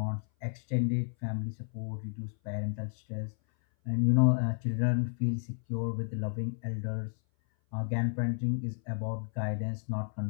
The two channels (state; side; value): silent; right; 57 dB below the other